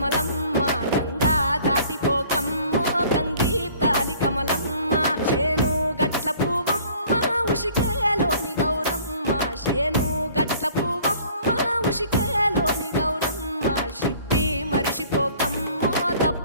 గంగా దాటిపోకమ్మో గంగీ తాలి కమలమ్మ చేను గట్ల పువ్వమ్మ ఉషికేలోని గౌరమ్మ చేను గట్ల పువ్వమ్మ ఉషికేలోని గౌరమ్మ షిప్పి మరిషిపోకమ్మో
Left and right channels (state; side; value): inverted; both; correlation -0.52